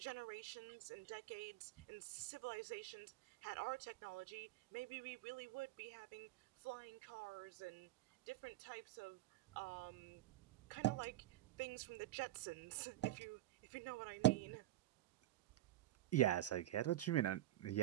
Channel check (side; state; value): left; quieter; 14.9 dB